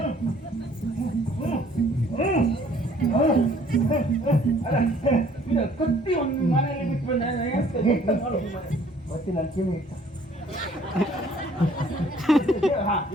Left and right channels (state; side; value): normal; both; correlation 0.58